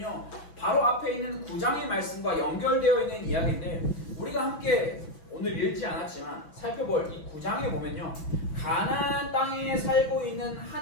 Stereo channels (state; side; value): late; right; 6.1 ms